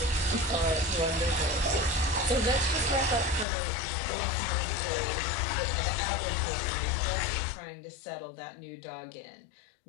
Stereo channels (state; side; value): drops out; right; at 3.5 s